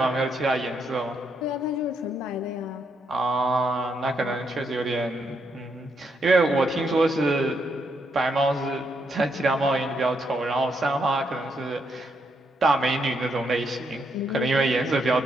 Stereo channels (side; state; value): both; normal; correlation 0.77